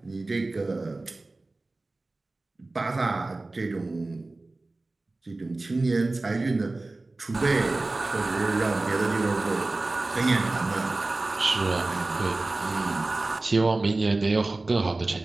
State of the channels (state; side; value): quieter; left; 3.2 dB